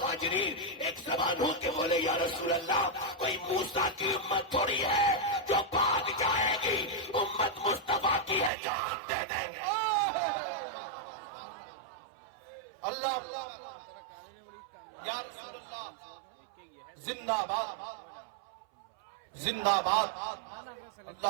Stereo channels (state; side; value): drops out; left; at 8.5 s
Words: ایک زبان ہو کے بولے یا رسول اللہ کوئی موسیٰ کی امت تھوڑی ہے جو بھاگ جائے گی، امت مصطفیٰ کی ہے، جان دے دیں گے. اللہ یا رسول اللہ زندہ باد زندہ باد. اللہ